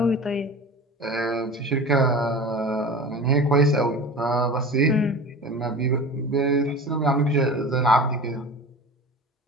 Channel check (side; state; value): both; normal; correlation 0.35